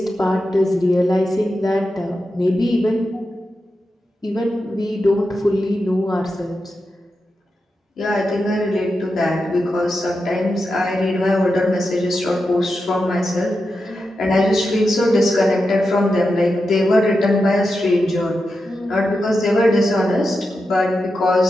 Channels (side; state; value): both; normal; correlation 0.89